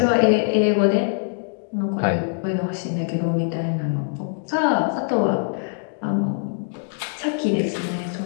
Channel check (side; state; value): right; silent; digital silence